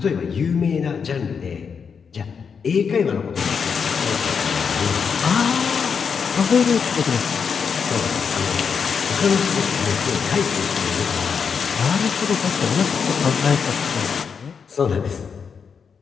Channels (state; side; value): quieter; right; 6.2 dB